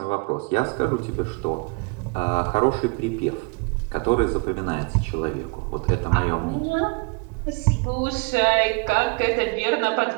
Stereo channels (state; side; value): quieter; left; 31.3 dB